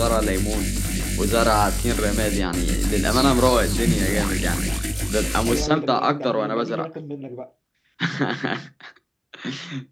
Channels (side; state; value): both; identical; correlation 1.00